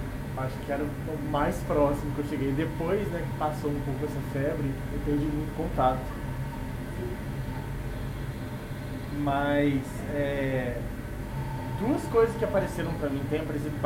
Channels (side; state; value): both; identical; correlation 1.00